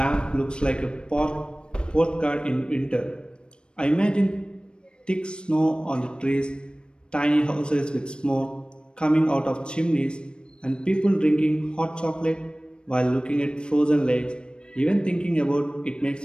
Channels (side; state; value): right; late; 0.054 ms